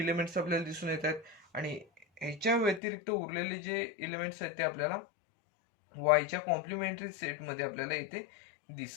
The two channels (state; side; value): drops out; right; at 2.8 s